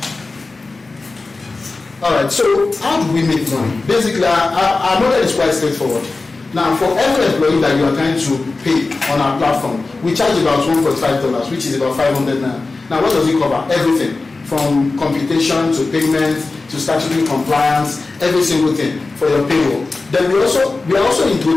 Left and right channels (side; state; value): right; quieter; 3.6 dB